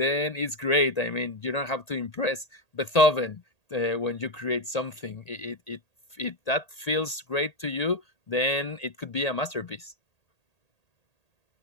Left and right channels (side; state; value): right; late; 1.8 ms